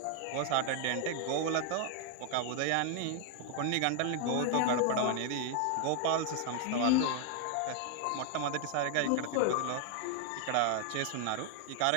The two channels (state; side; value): different; both; correlation 0.00